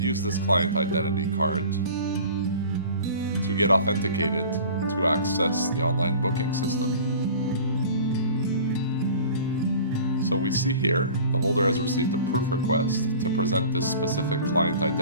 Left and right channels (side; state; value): both; inverted; correlation -0.42